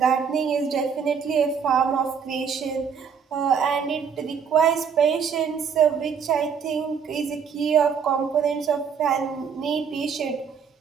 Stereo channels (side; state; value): left; quieter; 6.7 dB